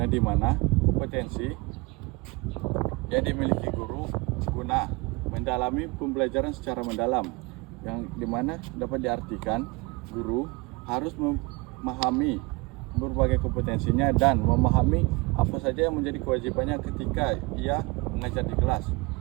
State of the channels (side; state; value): left; quieter; 26.2 dB